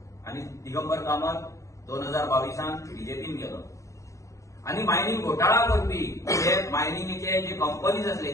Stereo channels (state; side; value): late; right; 0.15 ms